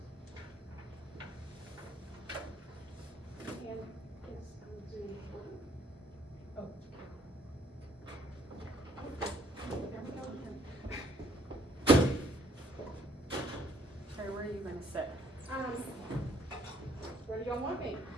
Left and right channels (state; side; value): normal; both; correlation 0.64